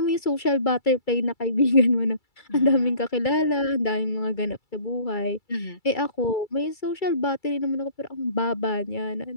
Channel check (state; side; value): late; right; 2.3 ms